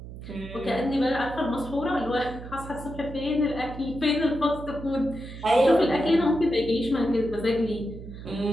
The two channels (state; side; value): noise; right; hum, 12 dB below the sound